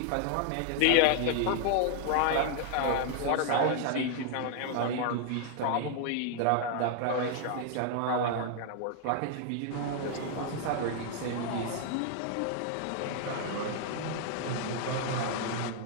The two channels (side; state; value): both; different; correlation 0.00